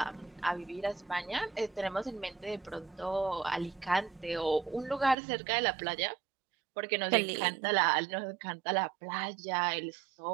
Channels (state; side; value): drops out; left; at 5.2 s